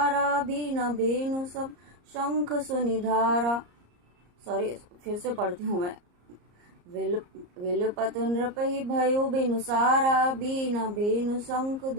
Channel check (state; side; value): late; left; 34 ms